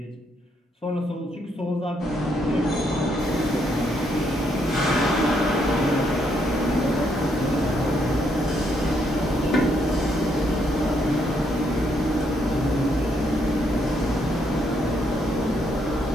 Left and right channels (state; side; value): normal; both; correlation 0.74